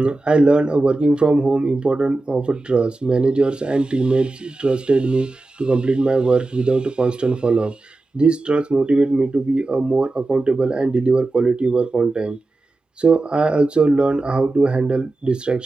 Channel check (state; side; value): quieter; left; 3.0 dB